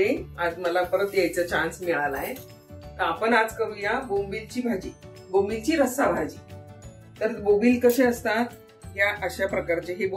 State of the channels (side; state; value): both; identical; correlation 1.00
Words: आज मला परत यायचा चान्स मिळाला आहे। तर आपण आज करूया बोंबीलची भाजी, बोंबीलची रस्सा भाजी। तर बोंबील कसे असतात, या अशा प्रकारचे हे